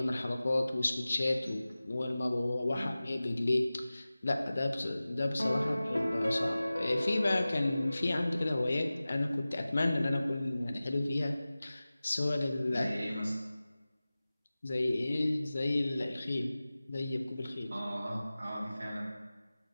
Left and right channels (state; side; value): inverted; both; correlation -0.97